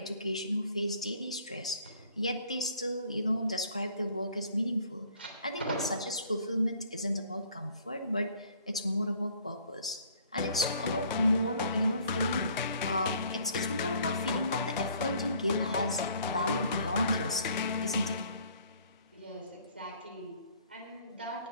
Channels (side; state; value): both; inverted; correlation -0.58